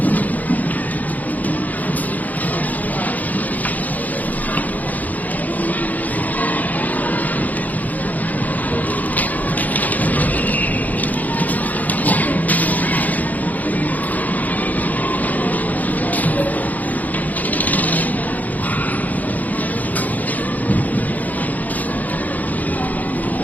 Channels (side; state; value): right; late; 0.079 ms